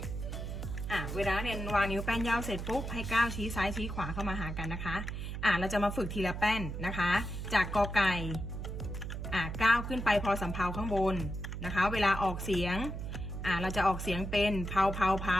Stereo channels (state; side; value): noise; right; hum, 5 dB below the sound